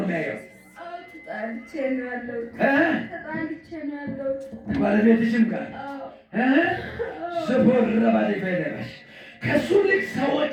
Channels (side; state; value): both; identical; correlation 1.00